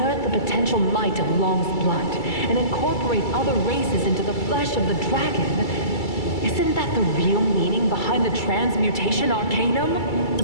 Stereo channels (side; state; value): right; late; 2.3 ms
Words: the potential might of Long's blood and incorporate other races into the flesh of the dragon. Isn't that the real meaning behind the transmutation arcanum? The